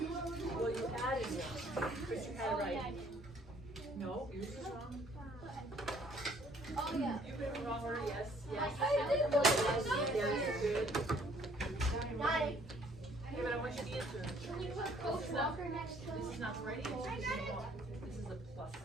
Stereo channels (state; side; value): normal; both; correlation 0.60